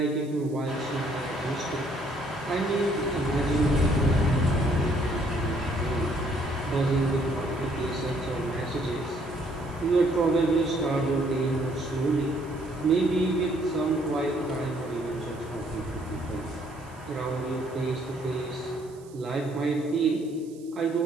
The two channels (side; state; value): right; noise; hiss, 26 dB below the sound